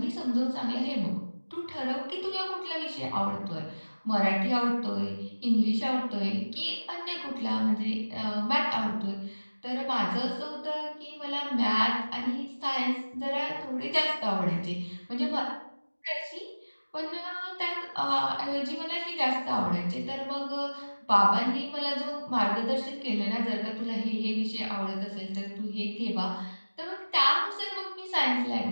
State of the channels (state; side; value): inverted; both; correlation -1.00